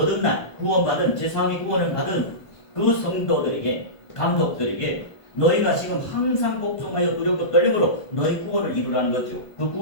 구원받은 제3위 구원을 받은 그 성도들에게, 감독들에게 너희가 지금 항상 복종하여 두렵고 떨림으로 너희 구원을 이루라는 거죠. 그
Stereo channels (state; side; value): late; right; 1.5 ms